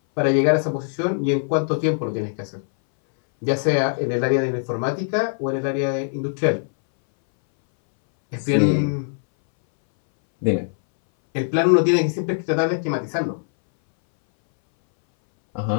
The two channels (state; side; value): silent; right; 62 dB below the other